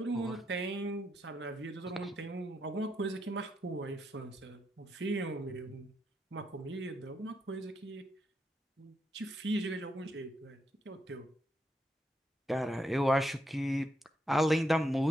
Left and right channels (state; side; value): normal; both; correlation 0.80